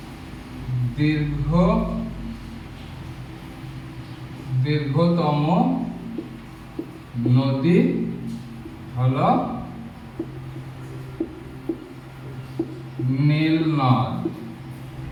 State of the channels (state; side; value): identical; both; correlation 1.00